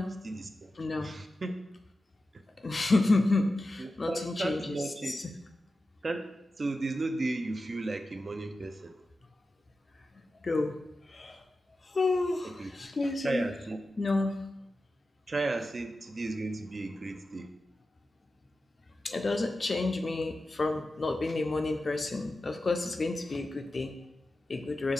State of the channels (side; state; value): both; normal; correlation 0.92